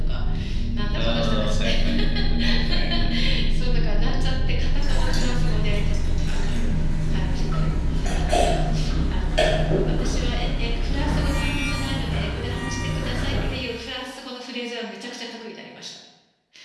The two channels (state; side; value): identical; both; correlation 1.00